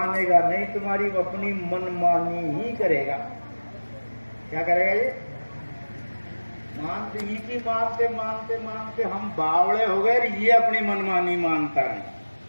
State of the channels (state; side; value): inverted; both; correlation -1.00